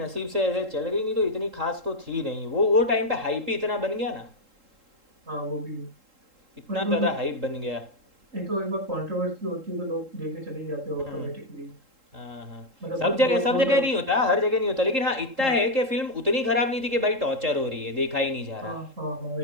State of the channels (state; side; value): late; left; 3.7 ms